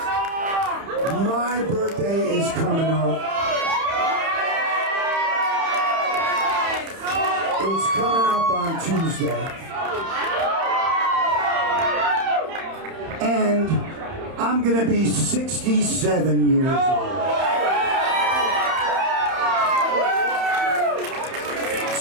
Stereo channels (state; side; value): late; left; 31 ms